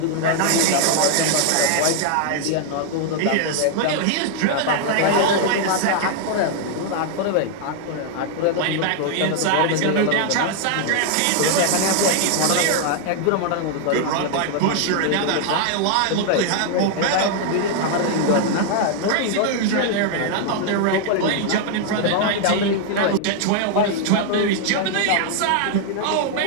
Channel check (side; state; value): both; different; correlation 0.00